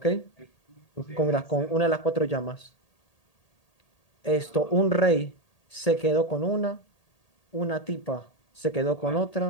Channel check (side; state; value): right; late; 1.8 ms